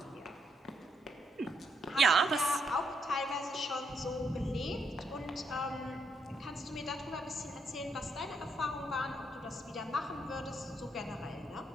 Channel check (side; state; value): both; normal; correlation 0.77